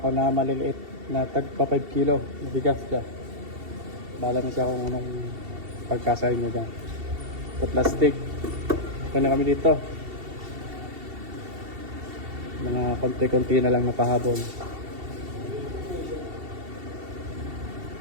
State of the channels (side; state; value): left; late; 2.7 ms